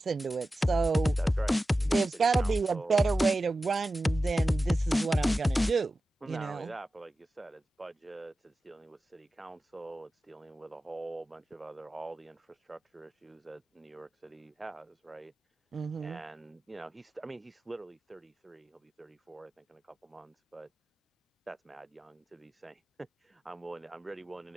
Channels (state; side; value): normal; both; correlation 0.94